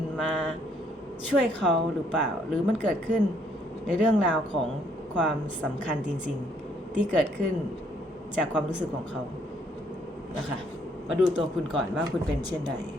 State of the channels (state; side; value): normal; both; correlation 0.68